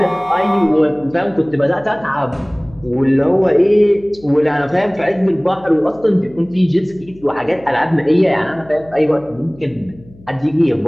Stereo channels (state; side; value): noise; left; hum, 24 dB below the sound